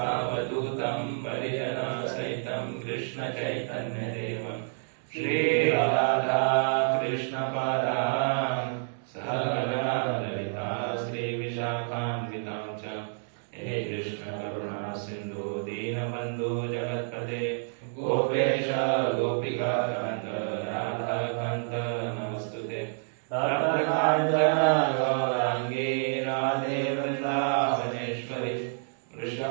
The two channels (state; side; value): silent; left; digital silence